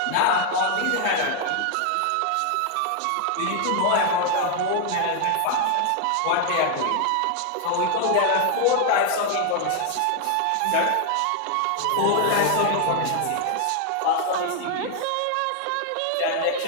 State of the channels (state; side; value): different; both; correlation 0.00